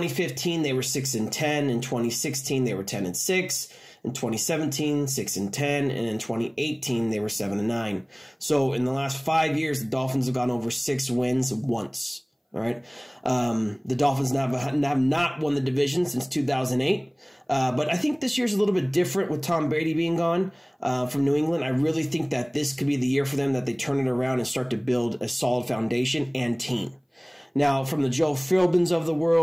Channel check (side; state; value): both; identical; correlation 1.00